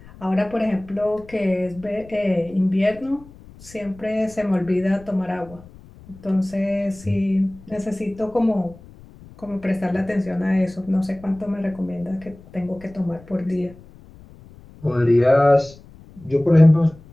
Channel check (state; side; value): noise; left; rumble, 21 dB below the sound